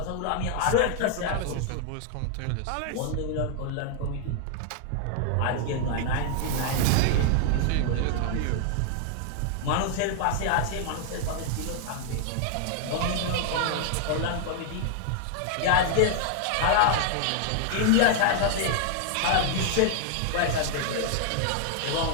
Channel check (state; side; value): different; both; correlation 0.00